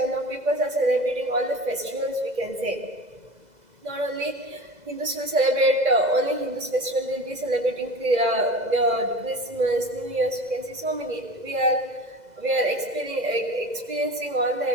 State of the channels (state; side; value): late; left; 2.0 ms